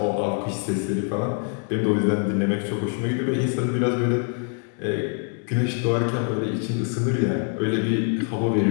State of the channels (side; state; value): right; quieter; 39.6 dB